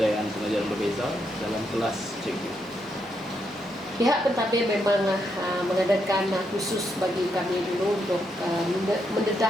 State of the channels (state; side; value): normal; both; correlation 0.79